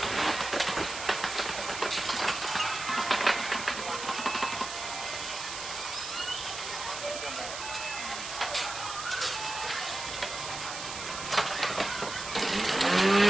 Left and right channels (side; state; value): right; noise; hiss, 7 dB below the sound